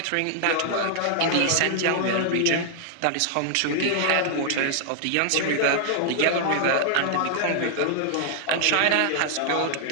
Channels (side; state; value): both; different; correlation 0.00